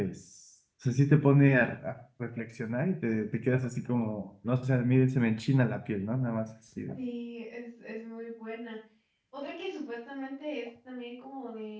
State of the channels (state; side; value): identical; both; correlation 1.00